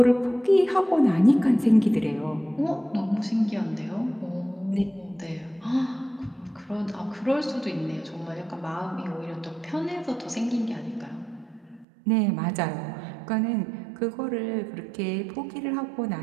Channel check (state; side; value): drops out; left; at 11.9 s